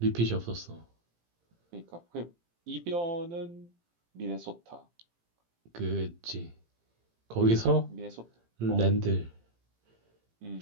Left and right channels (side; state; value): left; late; 18 ms